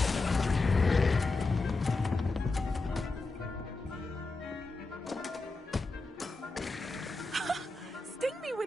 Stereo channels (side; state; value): right; quieter; 3.3 dB